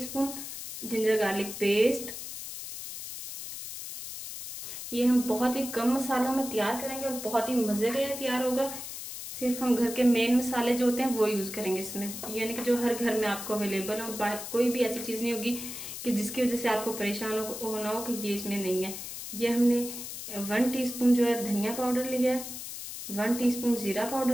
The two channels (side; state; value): left; noise; hiss, 9 dB below the sound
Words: जिंजर गार्लिक पेस्ट। ये हम बहुत ही कम मसालों में तैयार करेंगे और बहुत ही मजे का ये तैयार होगा। सिर्फ हम घर के मेन मसाले जो होते हैं वो यूज करेंगे इसमें, यानी कि जो हर घर में आपको अवेलेबल हो। कोई भी ऐसी चीज नहीं होगी कि जिसकी वजह से आपको परेशान होना हो कि ये इसमें नहीं है। ये हमने 1 टीस्पून जो है धनिया पाउडर लिया है, 1 टीस्पून जीरा